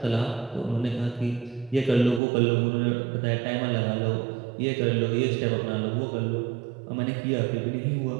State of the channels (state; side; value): drops out; left; at 2.2 s